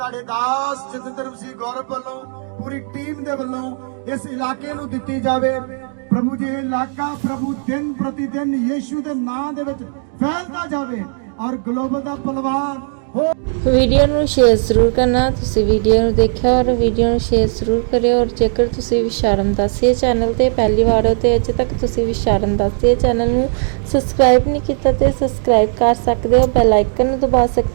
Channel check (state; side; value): silent; left; 64 dB below the other